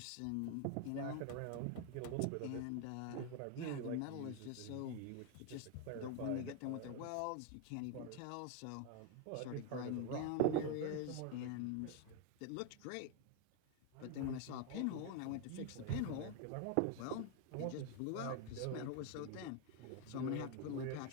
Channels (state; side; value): different; both; correlation 0.01